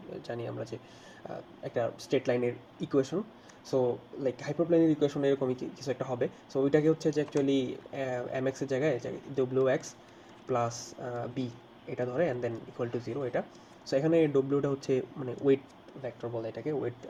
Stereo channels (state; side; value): identical; both; correlation 1.00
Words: জানি আমরা যে একটা স্ট্রেট লাইনের ইকুয়েশন। সো লাইক হাইপারপ্লেনের ইকুয়েশন এরকমই কিছু একটা হবে, সো ওইটাকে হচ্ছে যে অ্যাকচুয়ালি mx এর জায়গায় wx প্লাস বি এটা ধরে অ্যান্ড দেন ইকুয়াল টু 0 এটা। সো এখানে ডব্লিউটা হচ্ছে মানে ওয়েট ভেক্টর বলে এটাকে, ওয়েট